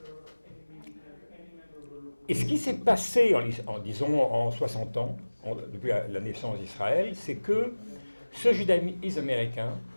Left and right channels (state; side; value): inverted; both; correlation -1.00